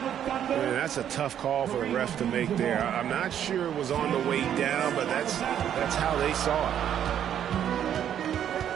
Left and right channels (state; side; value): quieter; left; 9.8 dB